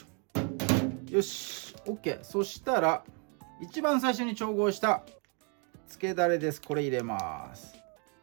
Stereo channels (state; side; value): quieter; left; 37.6 dB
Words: ょ。よし OK。 そしたら一番最初に調合したつけだれです。これ入れます。